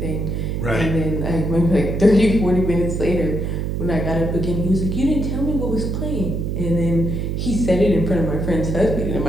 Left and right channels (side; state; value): right; noise; hum, 2 dB below the sound